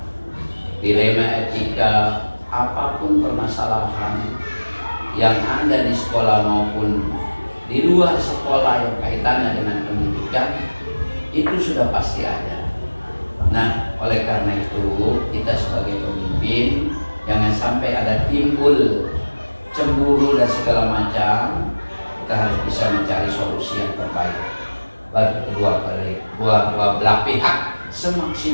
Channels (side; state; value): both; inverted; correlation -1.00